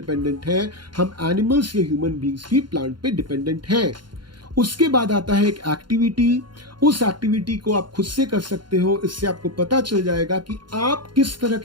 है, हम एनिमल्स या ह्यूमन बींग्स भी प्लांट पे डिपेंडेंट हैं. उसके बाद आता है एक एक्टिविटी. उस एक्टिविटी को आप खुद से कर सकते हो. इससे आपको पता चल जाएगा कि आप किस तरह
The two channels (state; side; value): late; left; 0.72 ms